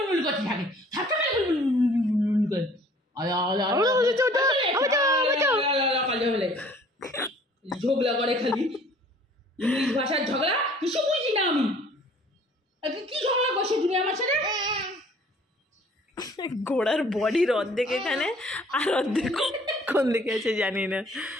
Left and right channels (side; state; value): both; normal; correlation 0.54